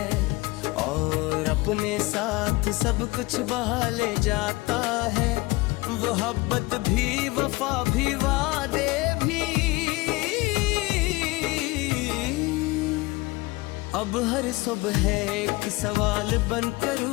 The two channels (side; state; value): right; quieter; 22.3 dB